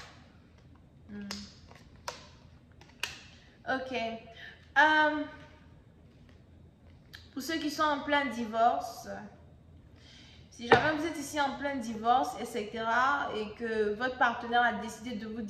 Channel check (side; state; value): both; identical; correlation 1.00